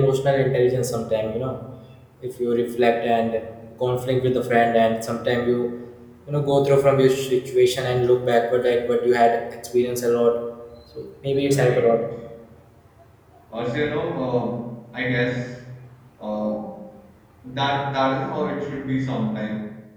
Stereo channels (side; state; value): both; identical; correlation 1.00